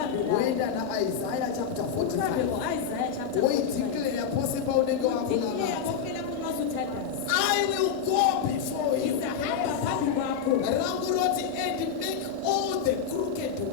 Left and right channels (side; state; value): right; quieter; 7.3 dB